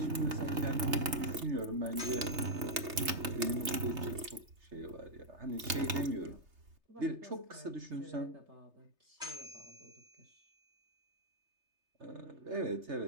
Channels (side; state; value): left; late; 3.3 ms